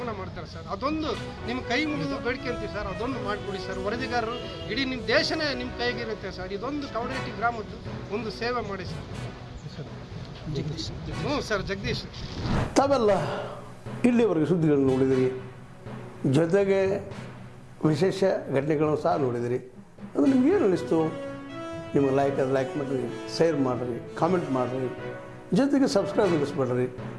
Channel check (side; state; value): both; identical; correlation 1.00